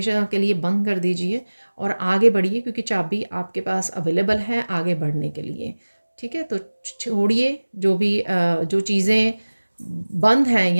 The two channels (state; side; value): inverted; both; correlation -1.00